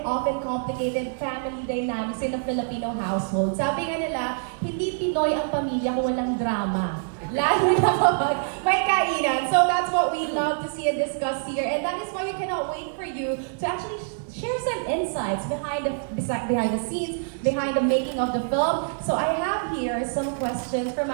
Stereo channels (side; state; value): left; silent; digital silence